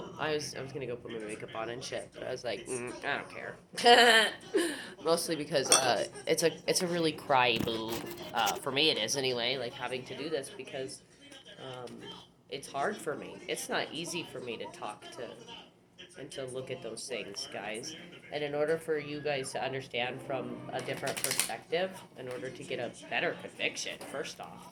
I was gonna go put my makeup on and shit, but I was like, I don't care. Mostly because it's a really cry boo. For me it is anyway, like having to do this because um, it's hard for me. It's not easy for me to talk to and to look at those things, guys. And in order for you guys to understand from a different perspective, in order to get a better conviction, first off,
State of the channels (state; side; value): identical; both; correlation 1.00